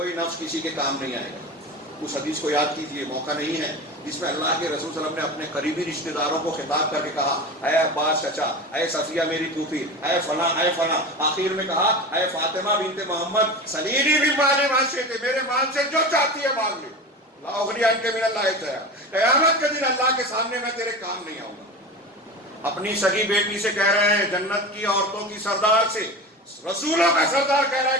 نفس کسی کے کام نہیں آئے گا۔ اس حدیث کو یاد کیجئے، موقع نہیں ہے، جس میں اللہ کے رسول صلی اللہ علیہ وسلم نے اپنے قریبی رشتہ داروں کو خطاب کر کے کہا، اے عباس چچا، اے صفیہ میری پھوپھی، اے فلاں اے فلاں، آخر میں کہا اے فاطمہ بنت محمد سلیلی من مال ما شئت، میرے مال سے جو چاہتی ہے مانگ لے، لا اغنی عنک من اللہ شیئا، قیامت کے دن اللہ کے سامنے میں تیرے کام نہیں آؤں گا۔ اپنی سگی بیٹی سے کہہ رہے ہیں، جنت کی عورتوں کی سردار سے، رسولوں کا سردار کہہ رہا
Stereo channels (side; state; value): both; normal; correlation 0.29